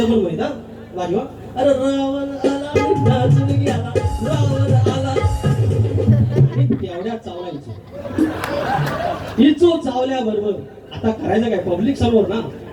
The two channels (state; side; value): identical; both; correlation 1.00